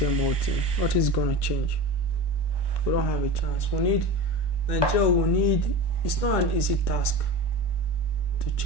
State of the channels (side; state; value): right; late; 1.1 ms